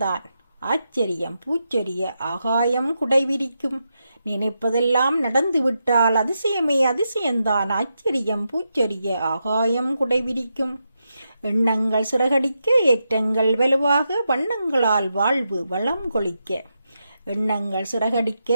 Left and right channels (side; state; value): both; inverted; correlation -0.86